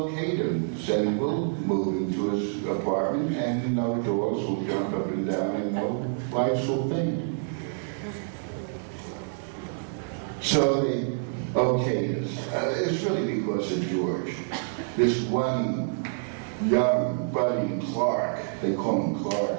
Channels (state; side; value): silent; left; digital silence